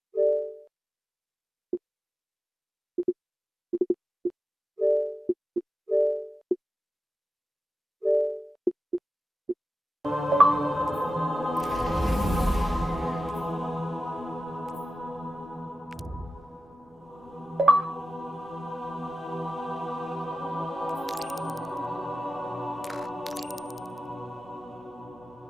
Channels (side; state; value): both; normal; correlation 0.92